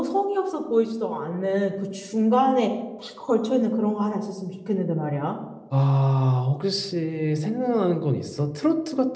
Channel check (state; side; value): identical; both; correlation 1.00